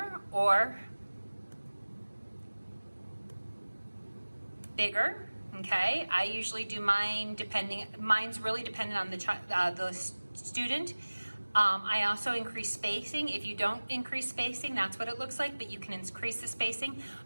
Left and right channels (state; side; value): inverted; both; correlation -1.00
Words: or bigger. Okay, I usually do mine mine's really dependent on the student. I also increase spacing. If you don't increase spacing, that's what it looks like, but you can increase the spacing.